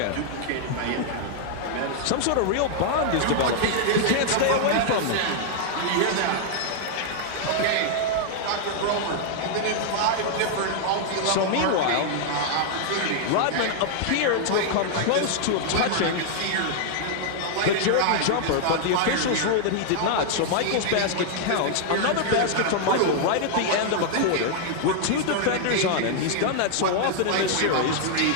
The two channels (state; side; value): different; both; correlation 0.00